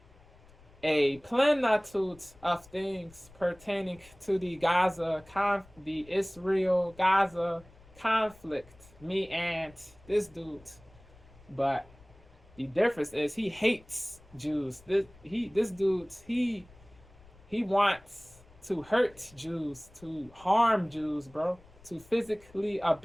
a plenitude of things pertaining to the Israel-Gaza conflict. Me and this dude, but the difference is he hates Jews. This dude he wants to hurt Jews, to harm Jews, bro, to physically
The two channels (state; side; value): noise; left; rumble, 25 dB below the sound